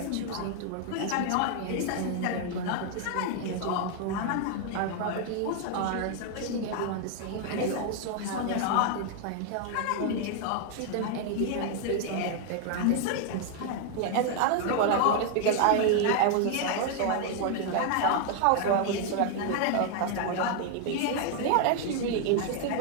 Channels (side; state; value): both; different; correlation 0.00